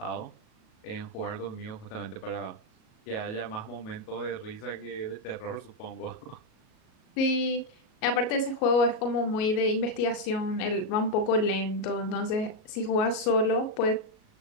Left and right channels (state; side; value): late; right; 37 ms